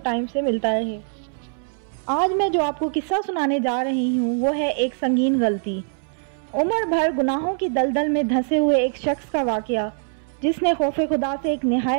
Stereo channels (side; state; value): left; silent; 64 dB below the other